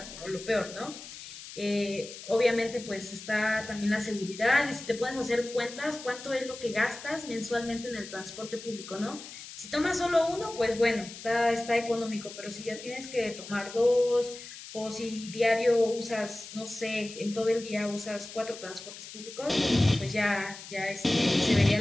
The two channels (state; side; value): noise; left; hiss, 13 dB below the sound